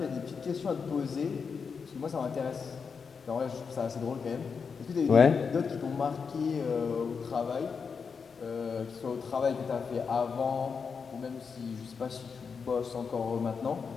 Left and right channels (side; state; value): right; quieter; 5.7 dB